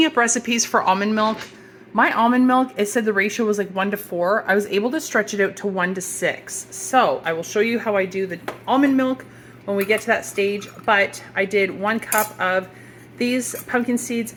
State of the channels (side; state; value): both; identical; correlation 1.00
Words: up recipes for almond milk, my almond milk, it said the ratio was like 1 to 4. I was able to stretch it out to 1 to 6. So I will show you how I do the almond milk when we get to that stage. But I did 1 cup of these pumpkin seeds,